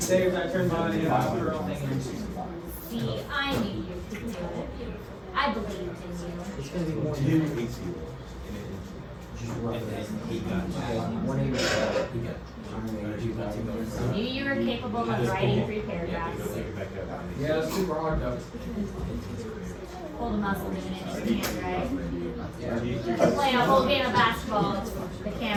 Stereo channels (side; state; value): both; identical; correlation 1.00